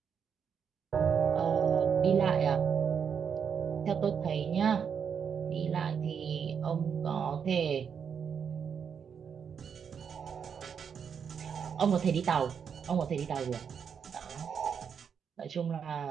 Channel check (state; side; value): quieter; left; 7.1 dB